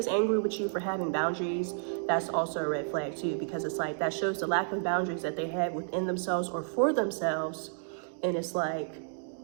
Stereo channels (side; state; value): left; silent; digital silence